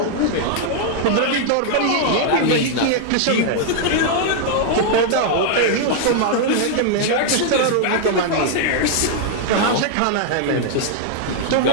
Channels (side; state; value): both; different; correlation 0.00